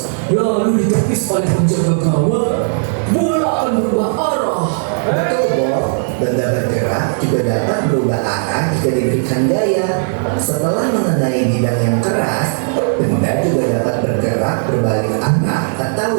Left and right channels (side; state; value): left; silent; digital silence